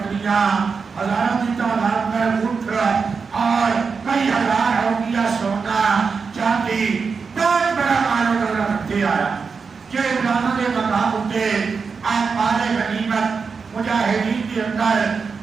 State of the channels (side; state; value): left; quieter; 5.2 dB